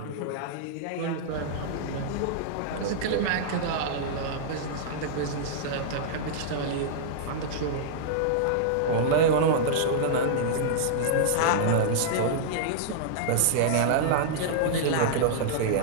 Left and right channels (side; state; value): both; different; correlation -0.02